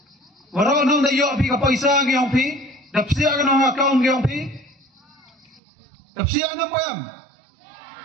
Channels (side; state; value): left; drops out; at 5.6 s